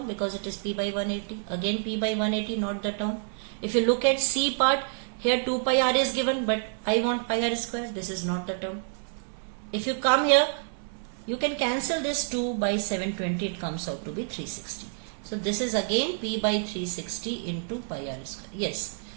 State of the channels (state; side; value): silent; left; 59 dB below the other